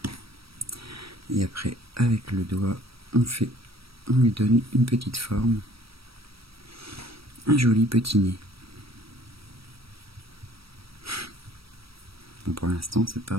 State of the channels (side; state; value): left; late; 0.76 ms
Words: Et après avec le doigt on lui donne une petite forme, un joli petit nez. Bon, pour l'instant c'est pas